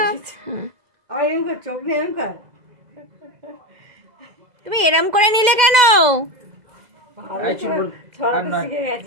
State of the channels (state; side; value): late; left; 2.0 ms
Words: আমার এরকম কর, চোখ নেই এরকম কর। তুমি এরম করে নিলে কেন? ভালো এই চুলবুল, ছড়াতে আর নয়। শিখে